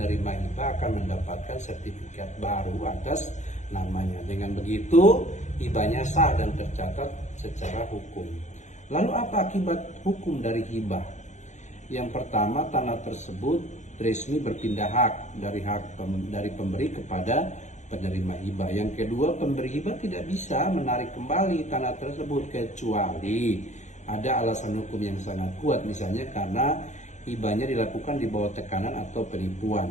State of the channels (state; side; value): late; right; 0.34 ms